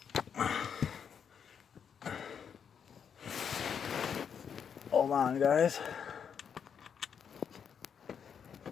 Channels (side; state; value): right; quieter; 7.4 dB